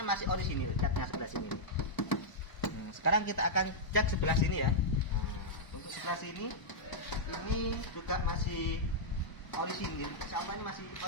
masih orisinil, catnya sebelah sini. Nah, sekarang kita akan cek sebelah sini ya. Nah, untuk sebelah sini ini juga masih orisinil. Insya Allah ini masih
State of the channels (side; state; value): right; late; 1.0 ms